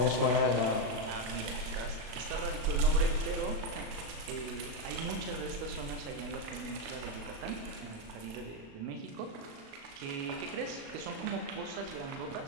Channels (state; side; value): late; left; 35 ms